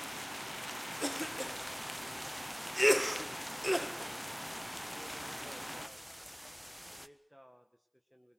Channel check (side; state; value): both; identical; correlation 1.00